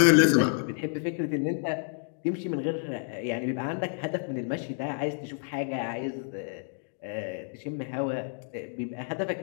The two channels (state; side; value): silent; right; 58 dB below the other